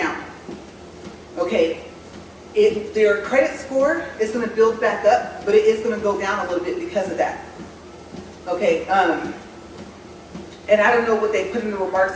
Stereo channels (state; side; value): identical; both; correlation 1.00